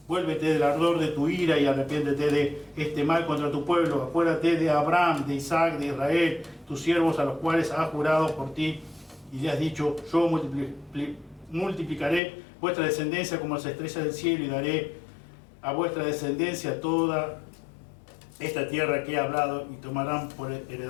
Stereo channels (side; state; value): right; drops out; at 12.2 s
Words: Vuélvete del ardor de tu ira y arrepiéntete de este mal contra tu pueblo. Acuérdate de Abraham, de Isaac, de Israel, tus siervos, a los cuales has jurado por ti, y le has dicho: yo multiplicaré vuestra descendencia como las estrellas del cielo, y daré a vuestra descendencia toda esta tierra que he hablado, y tomarán por